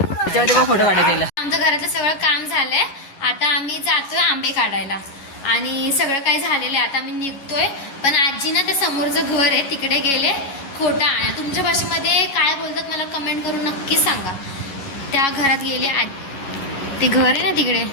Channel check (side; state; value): right; late; 11 ms